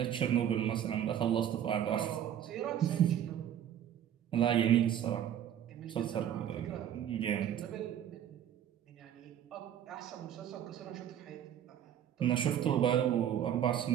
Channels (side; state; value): left; quieter; 10.2 dB